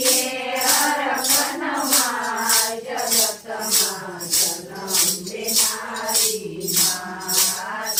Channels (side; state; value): both; identical; correlation 1.00